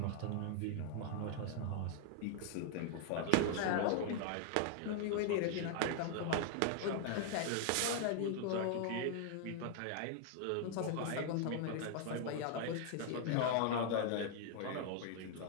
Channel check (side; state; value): both; different; correlation 0.00